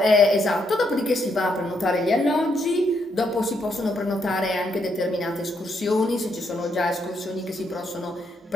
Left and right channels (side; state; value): both; normal; correlation 0.76